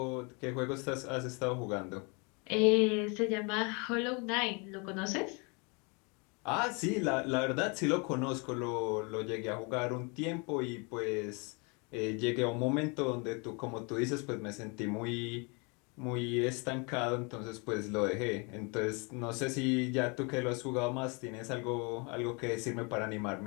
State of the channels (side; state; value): right; quieter; 32.0 dB